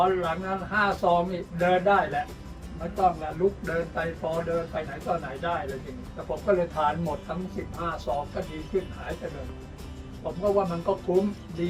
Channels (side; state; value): both; identical; correlation 1.00